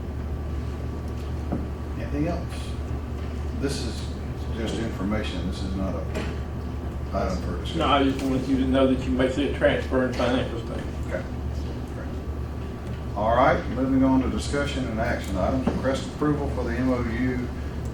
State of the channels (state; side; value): identical; both; correlation 1.00